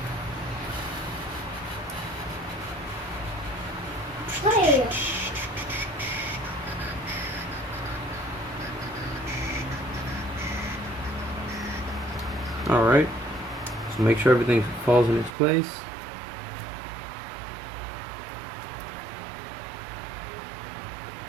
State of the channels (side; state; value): left; drops out; at 15.4 s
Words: Hey. Alright, so make sure everything falls in its place.